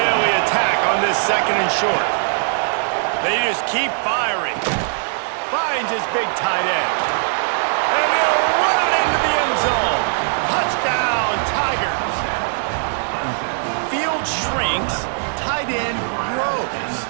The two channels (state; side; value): silent; left; 66 dB below the other